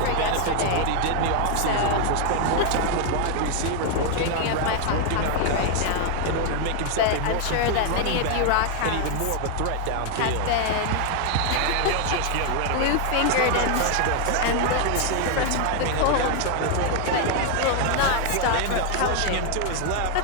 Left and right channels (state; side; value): different; both; correlation 0.00